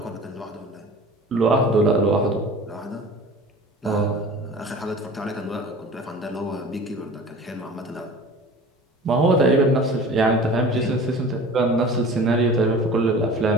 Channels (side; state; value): both; normal; correlation 0.41